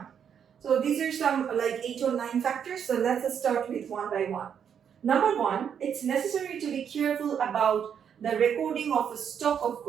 So these are some like 8 or 9 factors. So let's start with one by one. Number one, it's necessary to be careful about the recording of a stock of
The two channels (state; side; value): quieter; left; 8.0 dB